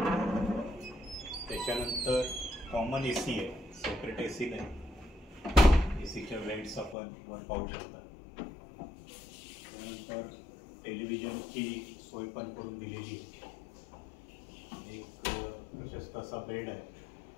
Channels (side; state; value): right; drops out; at 7.0 s